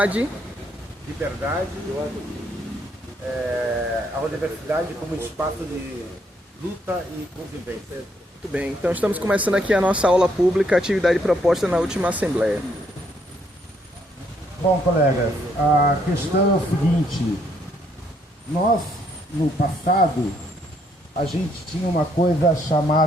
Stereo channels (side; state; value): both; normal; correlation 0.71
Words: liberdade, a universidade como espaço de luta e convivência. Muito bem, então estamos começando aqui a nossa aula pública, atividade proposta na última Assembleia. Bom, colegas, a questão é o seguinte: nós, no passado, a gente tinha uma coisa